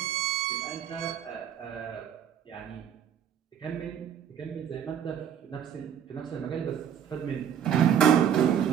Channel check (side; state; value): left; quieter; 9.1 dB